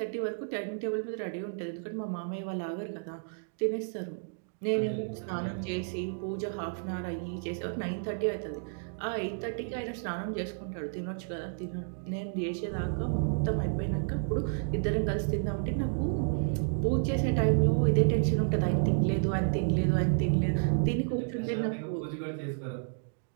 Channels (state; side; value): silent; left; digital silence